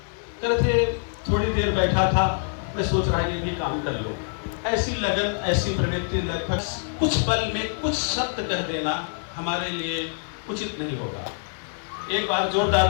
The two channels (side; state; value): right; silent; digital silence